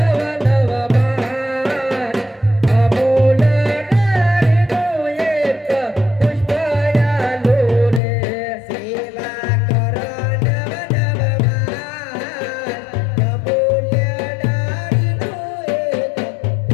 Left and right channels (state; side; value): drops out; right; at 8.0 s